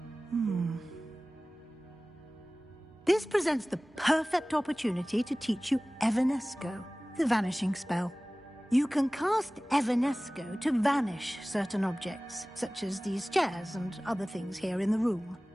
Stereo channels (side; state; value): both; normal; correlation 0.98